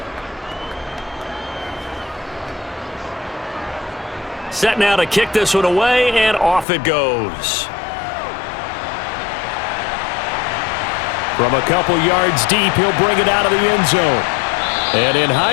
Set now to kick this one away, and off it goes. From a couple yards deep, he'll bring it out of the end zone. And in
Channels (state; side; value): drops out; right; at 6.7 s